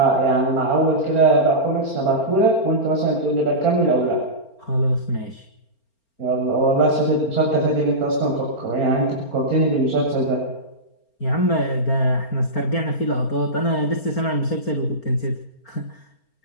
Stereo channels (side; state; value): right; late; 4.4 ms